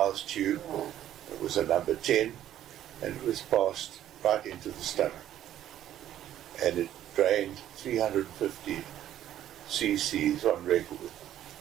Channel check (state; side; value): quieter; left; 11.8 dB